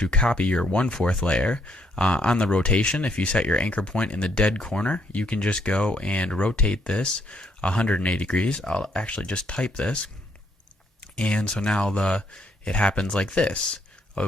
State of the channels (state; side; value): normal; both; correlation 0.71